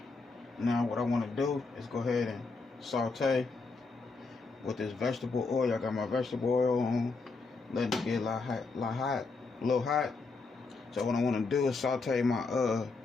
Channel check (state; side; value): quieter; right; 4.1 dB